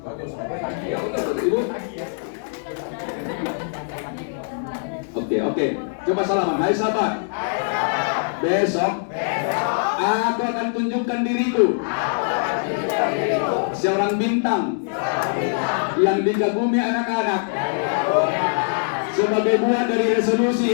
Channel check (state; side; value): silent; right; digital silence